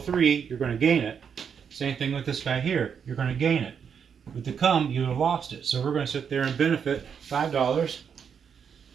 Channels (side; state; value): left; quieter; 7.1 dB